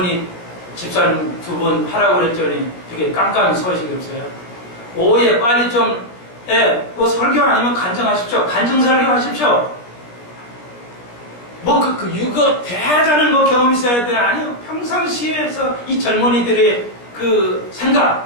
집사님 두 분 하라고 그랬더니 되게 깜깜이 소식이 없어요. 오후에 빨리 좀, 뭐 설교 아니면 간증하십시오. 간증 설교 하십시오. 뭐 이거 대단한 뭐 경험 있어야 되나? 아니요. 평상시에서 이 젊은이들의 그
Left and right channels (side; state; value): right; late; 17 ms